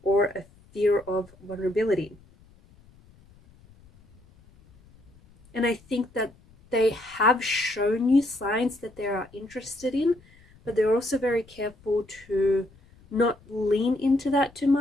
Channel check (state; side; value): noise; left; rumble, 27 dB below the sound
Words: or a fear of vulnerability. And I think that they have shown you signs that they are interested in, but they're also very careful to not lean into that too